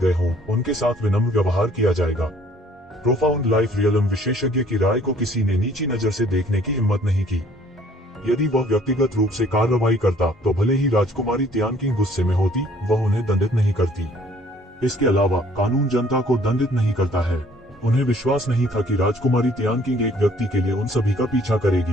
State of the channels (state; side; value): normal; both; correlation 0.58